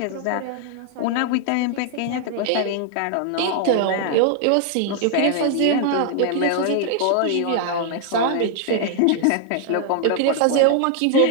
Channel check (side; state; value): both; different; correlation 0.00